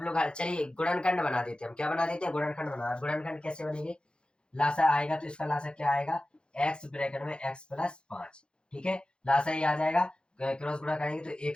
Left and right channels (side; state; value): right; late; 0.053 ms